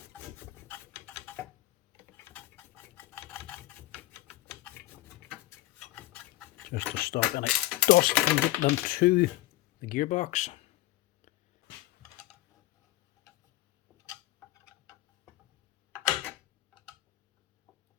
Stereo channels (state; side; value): quieter; right; 16.8 dB